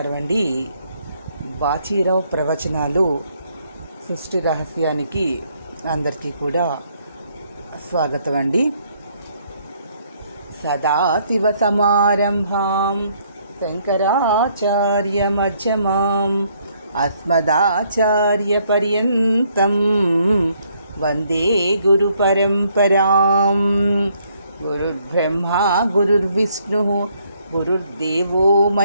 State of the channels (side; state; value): both; inverted; correlation -0.69